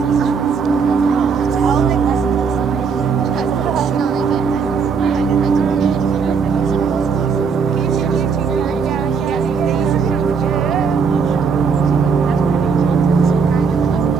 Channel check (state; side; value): quieter; left; 5.8 dB